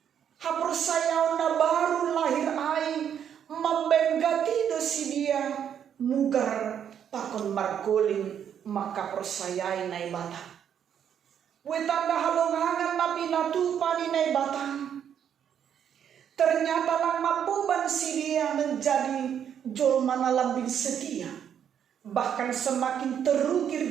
hapersayaw na baru lahir ay membenggati dosi dia mugar pakon margoling maka persayai na ibata wetanda halongangan na pinatupan ni batang. Ternyata lang mapuban si dia menjadi jolma na lambing setia. Bahkan semakin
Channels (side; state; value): left; quieter; 8.8 dB